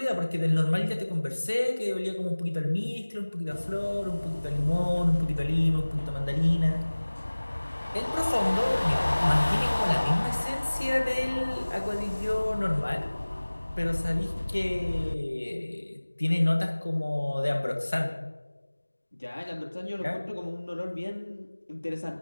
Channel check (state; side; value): inverted; both; correlation -1.00